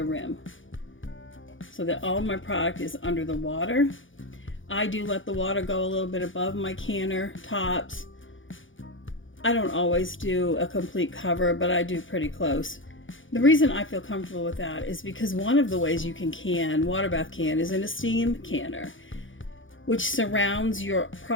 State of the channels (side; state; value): right; late; 0.57 ms